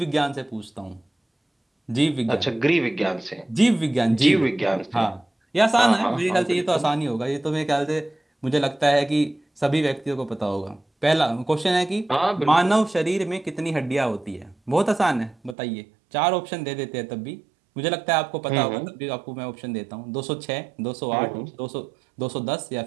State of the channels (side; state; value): left; drops out; at 15.6 s